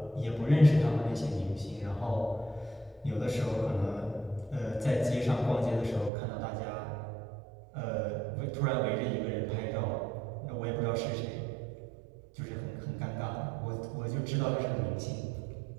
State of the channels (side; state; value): left; drops out; at 6.1 s